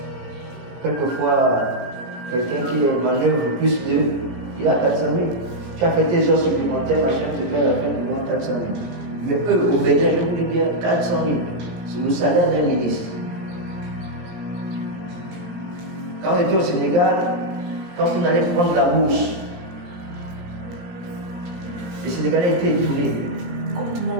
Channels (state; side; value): late; left; 17 ms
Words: quelquefois, quelqu'un qui manœuvre plus il a 400 000. Tu as fait tes heures supplémentaires, machin, tu fais à la fin du mois 400 000. Mais eux, au Bénin, je vous dis bien, 400 000, c'est le salaire d'un ministre. Quand on était au Sénégal, quand on allait prendre la bourse, les Sénégalais étaient étonnés.